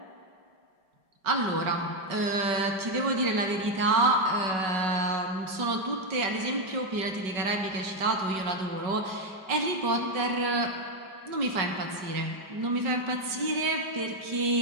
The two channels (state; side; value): late; left; 5.4 ms